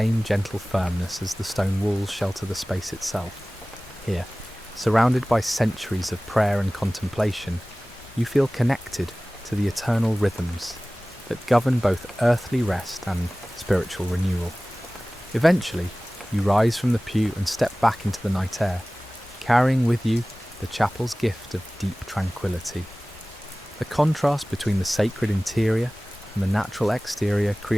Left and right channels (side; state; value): both; normal; correlation 0.98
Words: gentle firmness as the stone walls shelter the space itself. Here, surrounded by centuries of prayer and contemplation, you feel connected to the eternal rhythms that govern both earthly rest and spiritual renewal. Eventually, you rise from the pew and step back into the night air, carrying with you the chapel's gift of deep tranquility. The contrast between the sacred interior and the natural exterior